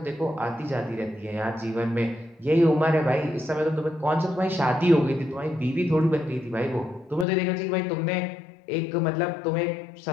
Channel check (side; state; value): right; drops out; at 7.2 s